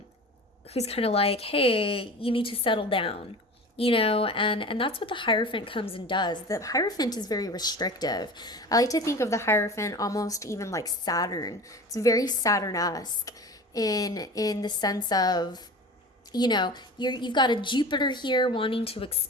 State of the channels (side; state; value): both; normal; correlation 0.35